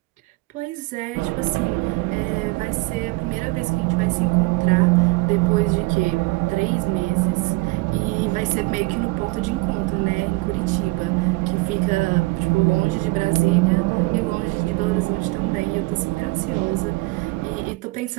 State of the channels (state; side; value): quieter; left; 23.8 dB